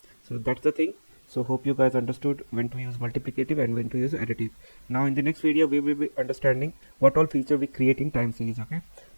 So that's the thing. So hope you guys understood when to use multiplicative and when to use additive. Now in the next video we will be understanding what all feature we create in time series. Okay,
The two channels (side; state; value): both; inverted; correlation -1.00